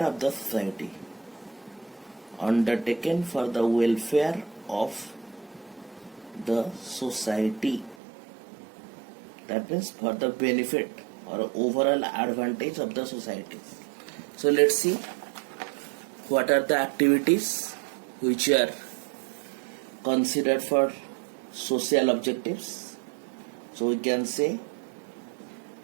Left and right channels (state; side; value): drops out; left; at 8.0 s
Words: of the society, that means for the benefit or overall advantage of the society. So let's see what are the activities which are considered for social objectives. So we can say